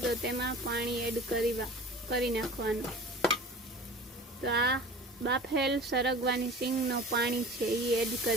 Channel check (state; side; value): normal; both; correlation 0.39